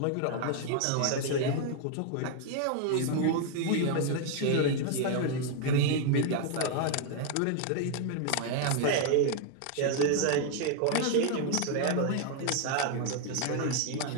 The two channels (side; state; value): both; different; correlation 0.00